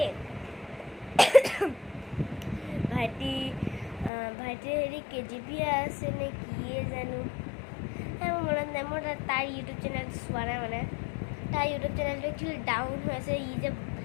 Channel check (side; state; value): right; drops out; at 4.1 s